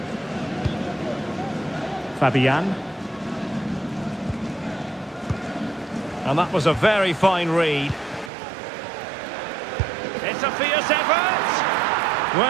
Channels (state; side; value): drops out; left; at 8.3 s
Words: Fabian. And that was a very fine read. It's a fierce effort!